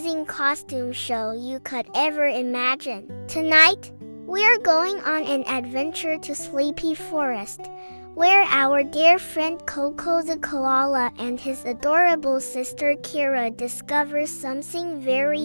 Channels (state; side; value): inverted; both; correlation -1.00